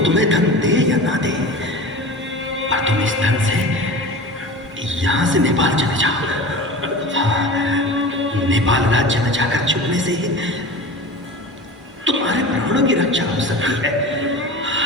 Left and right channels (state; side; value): normal; both; correlation 0.34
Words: तुम्हें धन दे या ना दे, पर तुम इस धन से यहां से नेपाल चले जाओ। नेपाल राज्य में जाकर छुपने से ही तुम्हारे प्राणों की रक्षा हो सकती है।